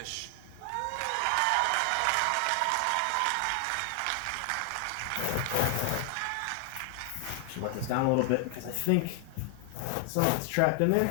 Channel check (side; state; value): both; different; correlation 0.00